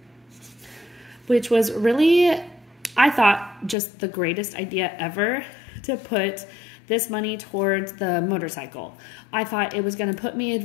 which was really, I thought, just the greatest idea ever to put this money towards the motorcycle. I thought it was going to put me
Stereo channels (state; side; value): drops out; right; at 3.8 s